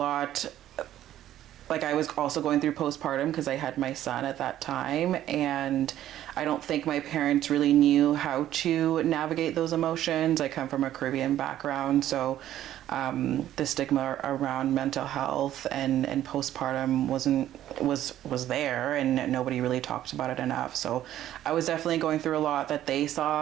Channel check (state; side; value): quieter; left; 12.5 dB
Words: like I was also going through postpartum because I had my son at that time, and I don't think my parents really knew how to navigate those emotions. I come from a Caribbean background, so the stigma around mental health and postpartum was there, and nobody really talked about it enough. So I was definitely going through a lot that they